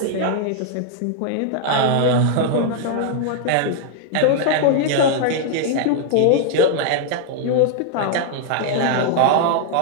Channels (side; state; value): both; different; correlation 0.00